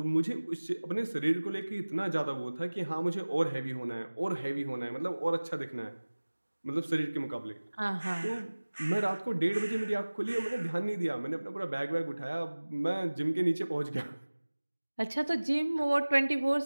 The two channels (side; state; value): both; inverted; correlation -1.00